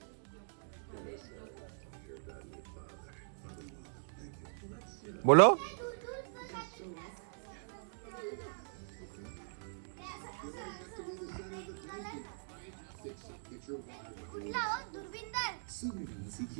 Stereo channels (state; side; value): silent; left; digital silence